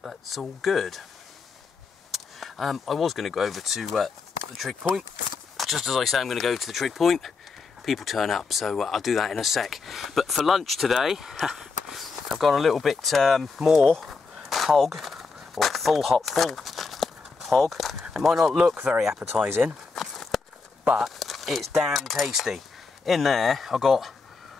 that's all good. I was going to go over to the Trig point. Just as I say I'm going to go to the Trig point, people turn up, so I'll do that in a sec. But for lunch today, I've got a little bit more hog, or full hog. It might not look very appetising, but it's damn tasty. In there I've got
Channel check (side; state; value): right; quieter; 4.6 dB